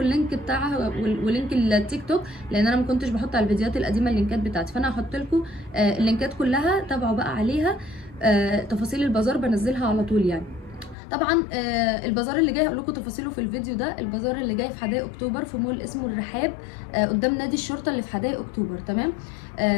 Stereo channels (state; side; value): drops out; right; at 11.0 s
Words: بتاعها ولينك التيك توك، لان انا ما كنتش بحط على الفيديوهات القديمه اللينكات بتاعتي. فانا هحط لكم اللينكات كلها، تابعوا بقى عليها. تفاصيل البازار بنزلها على طول يعني. طبعا البازار اللي جاي هقول لكم تفاصيله في الفيديو ده. البازار اللي جاي في حدائق اكتوبر في مول اسمه الرحاب قدام نادي الشرطه اللي في حدائق اكتوبر، تمام.